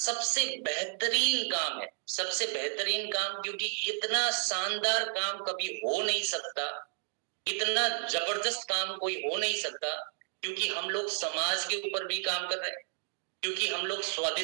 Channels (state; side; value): silent; left; digital silence